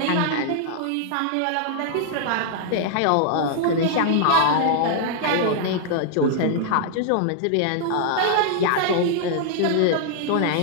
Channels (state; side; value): different; both; correlation 0.00